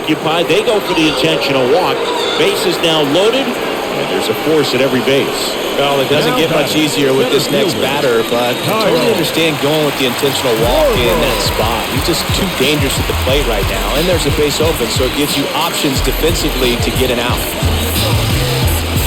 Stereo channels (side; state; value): both; identical; correlation 1.00